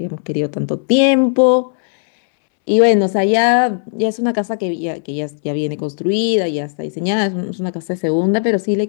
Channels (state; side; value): silent; right; 69 dB below the other